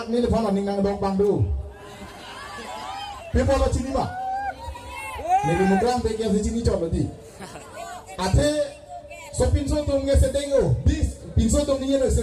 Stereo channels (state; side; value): identical; both; correlation 1.00